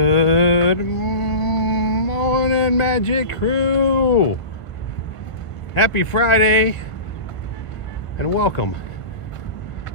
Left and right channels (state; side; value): late; right; 1.5 ms